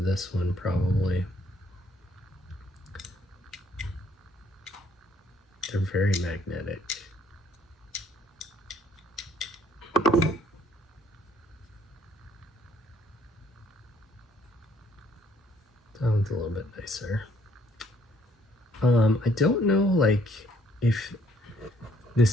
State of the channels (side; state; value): both; normal; correlation 0.65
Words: one probably. They're very magnetic. That one's a little bit nicer. I don't know like if